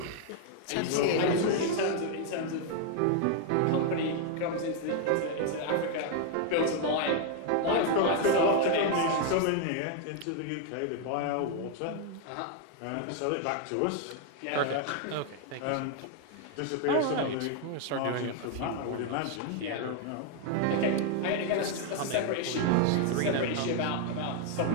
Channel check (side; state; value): both; different; correlation 0.00